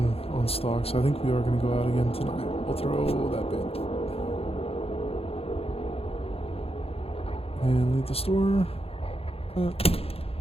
stock, so I think we are going to go out again tonight. We'll throw that bin. And leave the store. And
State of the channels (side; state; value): right; late; 0.28 ms